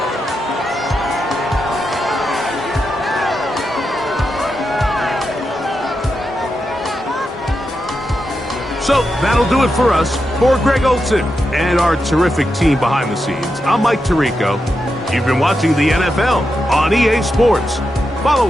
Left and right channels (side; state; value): both; normal; correlation 0.87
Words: So that'll do it for us. For Greg Olsen and our terrific team behind the scenes, I'm Mike Tirico. You've been watching the NFL on EA Sports.